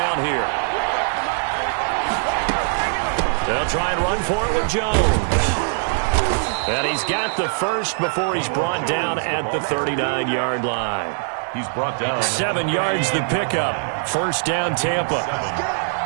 here. They'll try and run for it with Jones. And he's got the first before he's brought down at the 39-yard line. He's brought down. 7 yards the pickup. First down, Tampa.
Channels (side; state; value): left; silent; 63 dB below the other